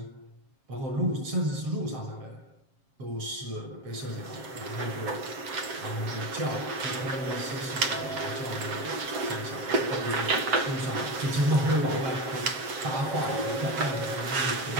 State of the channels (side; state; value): left; late; 7.4 ms